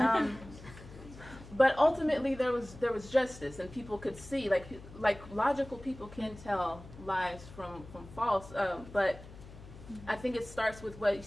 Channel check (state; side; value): noise; left; hum, 17 dB below the sound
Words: But ultimately there was justice, and people could see, like logical people can tell lies from false, but I think it starts with what you